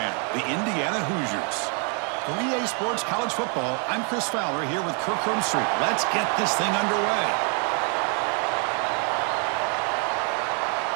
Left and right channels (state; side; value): quieter; left; 39.6 dB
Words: the Indiana Hoosiers. For EA Sports College Football, I'm Chris Fowler here with Kirk Hermstreet. Let's get this thing underway.